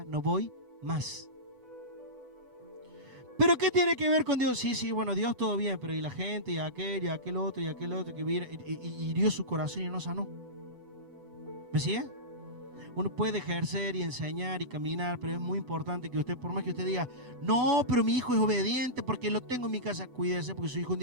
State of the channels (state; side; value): late; left; 8.0 ms